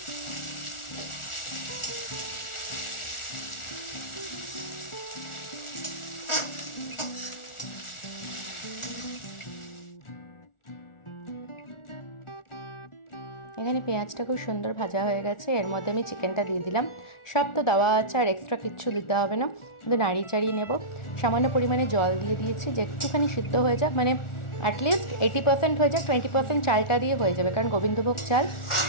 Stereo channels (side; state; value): right; late; 1.4 ms